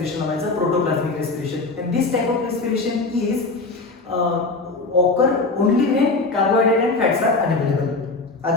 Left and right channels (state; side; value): quieter; right; 3.5 dB